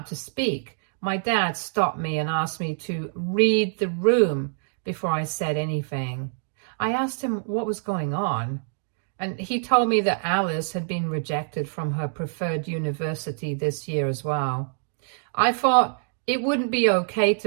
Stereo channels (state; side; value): silent; left; 61 dB below the other